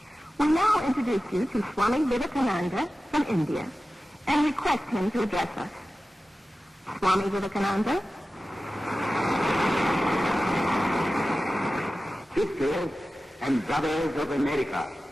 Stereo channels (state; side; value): normal; both; correlation 0.95